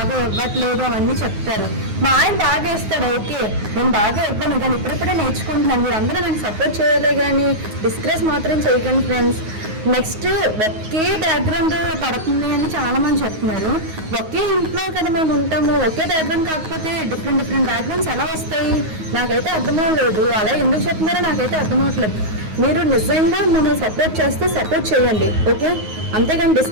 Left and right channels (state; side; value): late; left; 9.4 ms